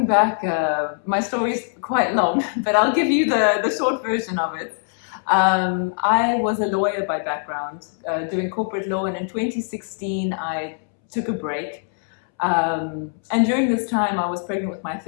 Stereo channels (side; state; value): right; silent; 64 dB below the other